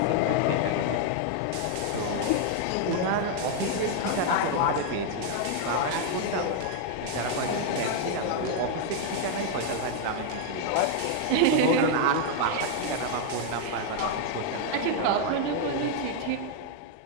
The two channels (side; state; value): both; different; correlation 0.00